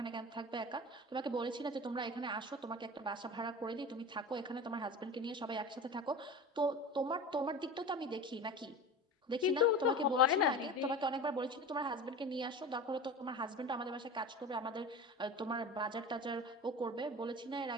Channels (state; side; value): normal; both; correlation 0.32